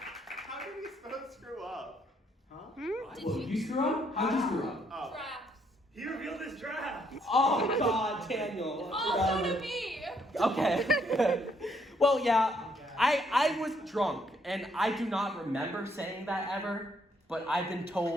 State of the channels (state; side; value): normal; both; correlation 0.71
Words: How did we screw up? Huh? Well, you screw up? How'd you screw up? Oh. Traps. He revealed his draft. Oh God, Daniel. Also to me. Okay. Well, yeah, I was drunk, and I do not remember saying that ever. But I've been